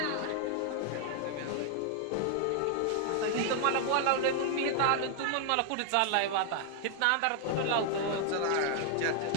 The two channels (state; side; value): different; both; correlation 0.00